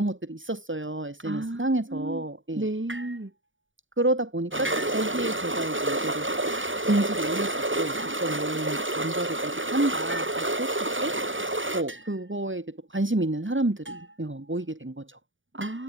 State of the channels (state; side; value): late; left; 0.57 ms